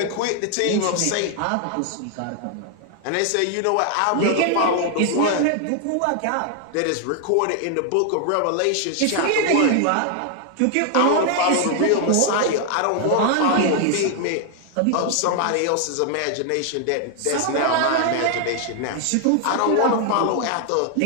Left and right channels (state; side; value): different; both; correlation 0.00